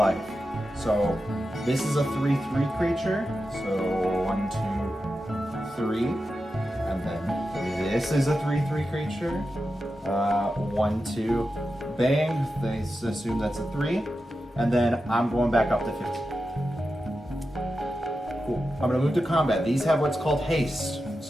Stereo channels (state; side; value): normal; both; correlation 0.91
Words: So this is a 3/3 creature. So 1, 2, 3. And then this is a 3/3 creature. 1, 2, bang. They assume that's a 3. And then I'm going back up to 15. Cool. I'm gonna move to combat. These have what's called haste,